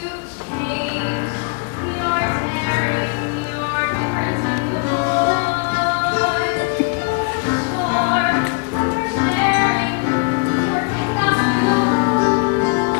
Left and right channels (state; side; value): quieter; right; 31.9 dB